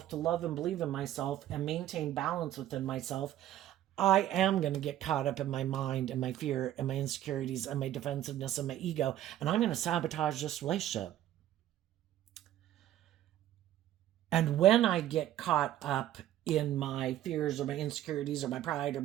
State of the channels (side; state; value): left; quieter; 12.7 dB